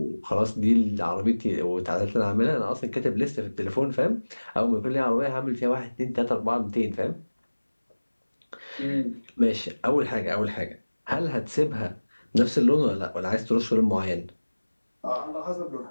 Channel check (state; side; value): inverted; both; correlation -1.00